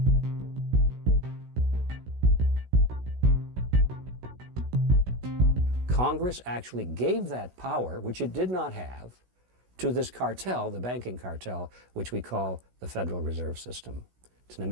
Congress actually gave that power, which it did not have, to this cartel, the banking cartel, which we call the Federal Reserve System. It's an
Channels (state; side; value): late; left; 16 ms